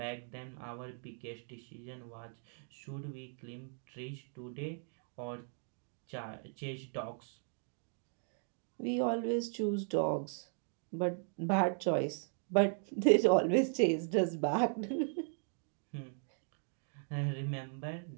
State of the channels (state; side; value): silent; left; 53 dB below the other